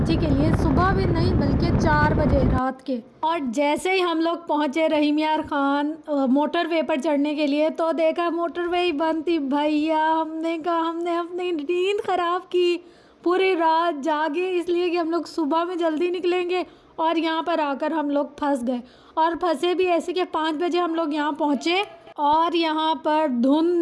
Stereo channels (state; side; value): identical; both; correlation 1.00